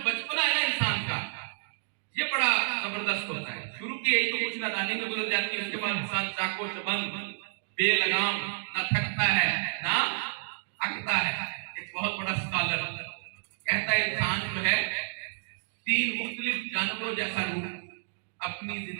बचपना है ना इंसान का, ये बड़ा जबरदस्त होता है। शुरू की यही तो कुछ नादानी में गुजर जाती है, उसके बाद इंसान चाको चबंद बेलगाम, ना थकता है ना अकता है। एक बहुत बड़ा स्कॉलर कहता है इंसान जो है 3 मुख्तलिफ जानवरों जैसा रूप अपनी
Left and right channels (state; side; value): silent; left; digital silence